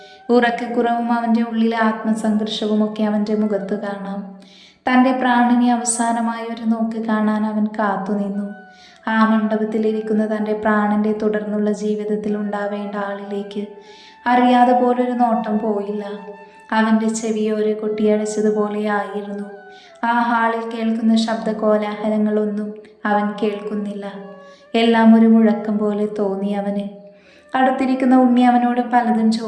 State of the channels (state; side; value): identical; both; correlation 1.00